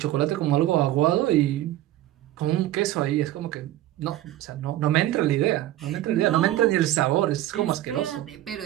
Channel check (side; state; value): left; quieter; 14.3 dB